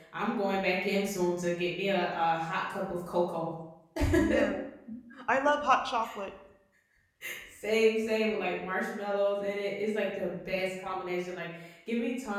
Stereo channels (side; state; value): both; identical; correlation 1.00